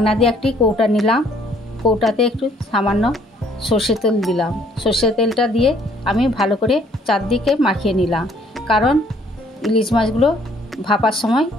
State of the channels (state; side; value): normal; both; correlation 0.62